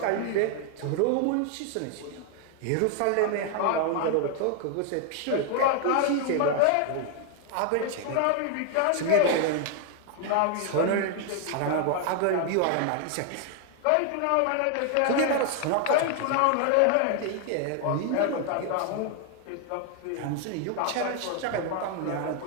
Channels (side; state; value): both; different; correlation 0.00